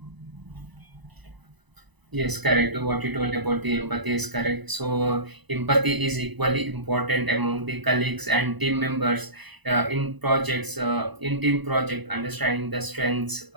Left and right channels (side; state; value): left; late; 1.0 ms